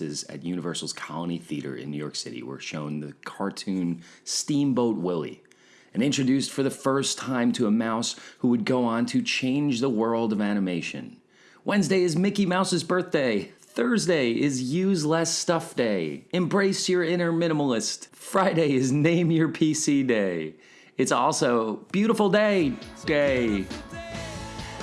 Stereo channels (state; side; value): identical; both; correlation 1.00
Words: at Universal's Colony Theater in New York City were shown the cartoon Steamboat Willie, and introduced for the first time to a mouse who would go on to change the world of animation. Wednesday is Mickey Mouse's birthday. Thursday is Use Less Stuff Day. Embrace your inner minimalist. Friday is Name Your PC Day. It's also Beautiful Day.